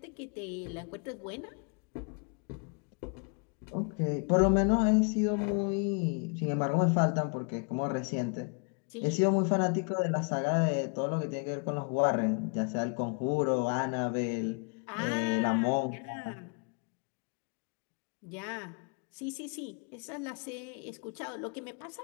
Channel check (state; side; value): quieter; right; 37.2 dB